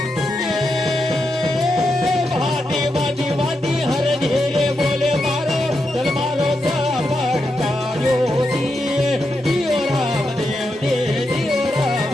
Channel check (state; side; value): normal; both; correlation 0.85